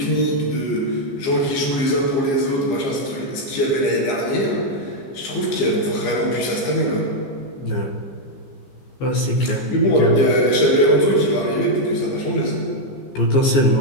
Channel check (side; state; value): right; late; 15 ms